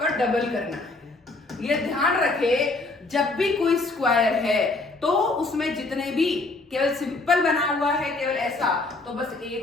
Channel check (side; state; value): right; quieter; 3.3 dB